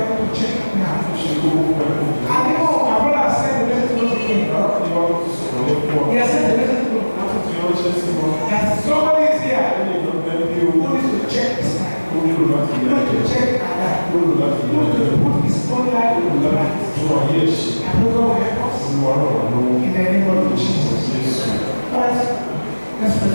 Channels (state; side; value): inverted; both; correlation -1.00